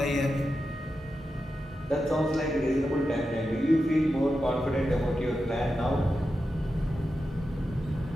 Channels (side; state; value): both; normal; correlation 0.90